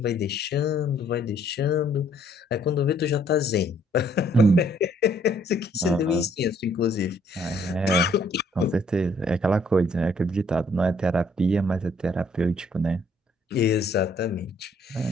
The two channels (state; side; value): normal; both; correlation 0.64